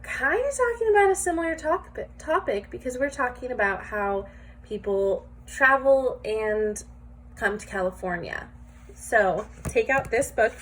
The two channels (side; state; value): both; identical; correlation 1.00